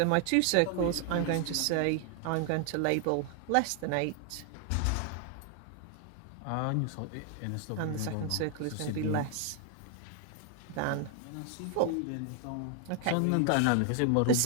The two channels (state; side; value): different; both; correlation 0.00